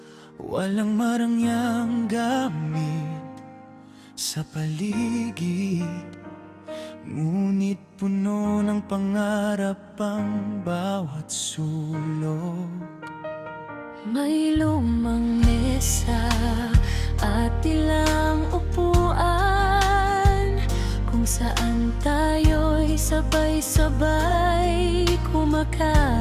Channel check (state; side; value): identical; both; correlation 1.00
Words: Walang marangyang gamit sa paligid, ngunit puno ng pangarap ang bawat sulok. May lumang mesa at ilang upuan, kung saan tayo'y sabay-sabay